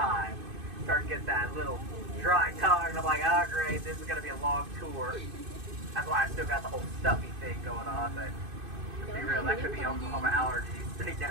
Start to get that little dry tongue, and I'm like, oh great, this is going to be a long tour. That's why I still got the whole stuffy thing going on, but to be real, that could be Oklahoma allergies. They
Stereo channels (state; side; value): late; left; 2.5 ms